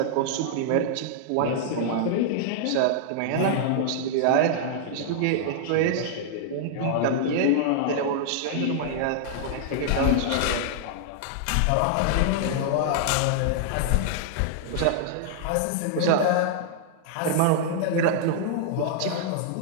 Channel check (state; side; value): different; both; correlation -0.01